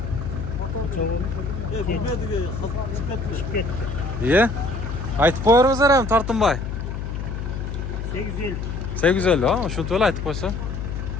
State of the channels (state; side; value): noise; left; hum, 5 dB below the sound